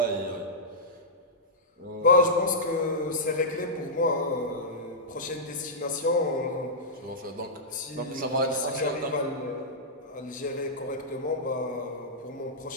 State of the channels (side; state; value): both; normal; correlation -0.13